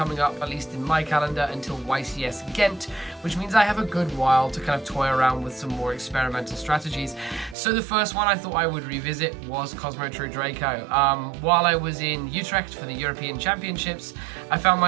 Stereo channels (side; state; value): left; drops out; at 7.6 s